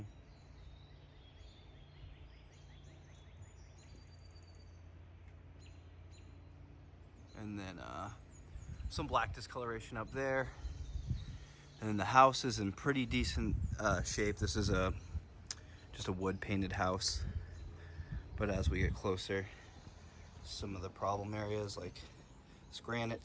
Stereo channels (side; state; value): both; identical; correlation 1.00